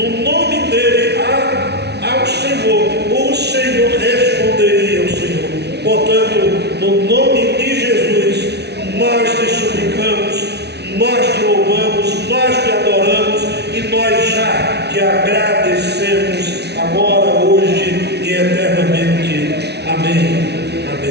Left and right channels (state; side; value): late; left; 0.49 ms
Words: nome dele ao Senhor, o Senhor responderia ao Senhor. Portanto, no nome de Jesus, nós te suplicamos, nós te louvamos, nós te adoramos e nós já te agradecemos agora, hoje e eternamente. Amém,